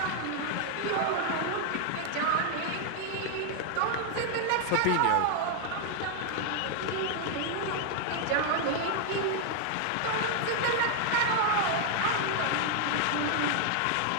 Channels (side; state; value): both; different; correlation 0.00